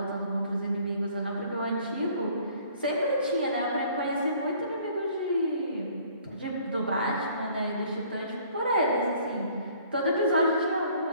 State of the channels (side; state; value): both; inverted; correlation -0.57